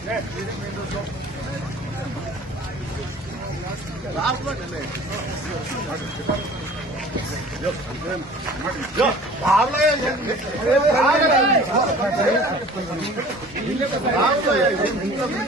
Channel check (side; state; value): both; normal; correlation 0.46